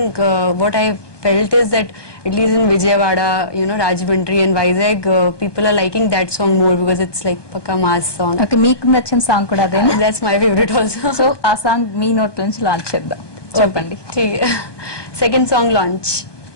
what I felt is that at least in Vijayawada, Rajahmundry and Vizag, people are liking that song more because it's like pakka mass song. Okay, మీకు నచ్చిన song కూడా అదే? That's my favorite also. So ఆ song మీ note నుంచి launch చేద్దాం, చెప్పండి. Second song launch.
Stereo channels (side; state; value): right; late; 1.2 ms